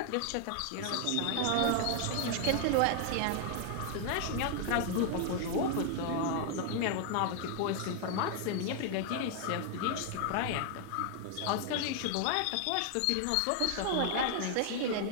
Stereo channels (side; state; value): both; different; correlation 0.00